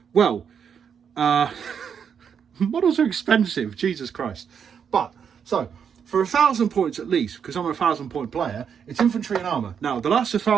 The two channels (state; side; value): quieter; left; 7.4 dB